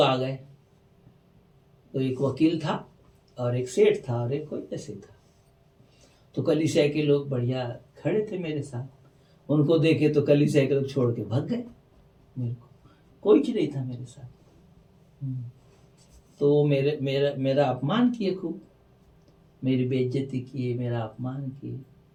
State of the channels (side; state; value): both; identical; correlation 1.00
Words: आ गए। तो एक वकील था और एक सेठ था और एक कोई ऐसे था। तो कलीसिया के लोग बढ़िया खड़े थे मेरे साथ, उनको देखे तो कलीसिया के लोग छोड़ के भाग गए। मेरे को कोई चीज नहीं था मेरे साथ। तो मेरा अपमान किए, खूब मेरी बेइज्जती किए, मेरा अपमान किए।